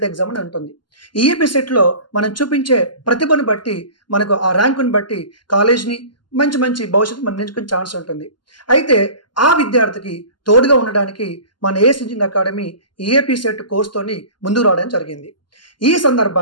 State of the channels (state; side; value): late; right; 0.71 ms